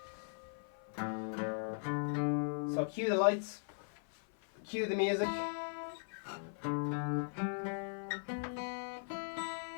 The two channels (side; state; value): right; silent; 52 dB below the other